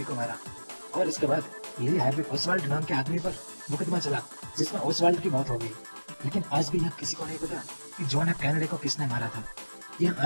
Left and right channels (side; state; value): both; inverted; correlation -1.00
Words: को मारा और इसके बाद ली हार्वे ओसवाल्ड नाम के आदमी पर मुकदमा चला जिसमें ओसवाल्ड की मौत हो गई। लेकिन आज भी यहाँ किसी को नहीं पता कि जॉन एफ कैनेडी को किसने मारा था। यह